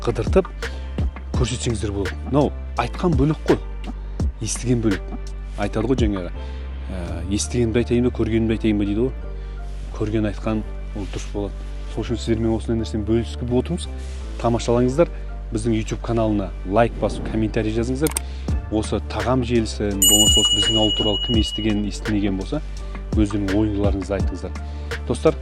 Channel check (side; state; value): both; identical; correlation 1.00